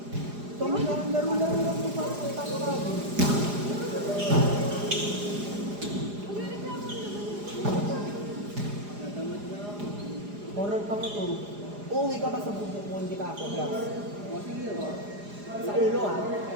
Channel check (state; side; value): late; left; 4.9 ms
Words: Laro-laro lang ito para sa tawag. Horror pa mo to. Uuwi ka ba sa bubuk mo, hindi ka ako, Glass? Sa ulo ah.